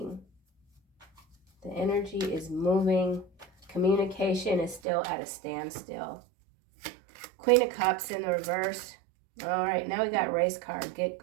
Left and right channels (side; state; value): left; drops out; at 4.8 s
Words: The energy is moving. Communication is still at a standstill. Queen of Cups in the reverse. All right, now we got race card. Get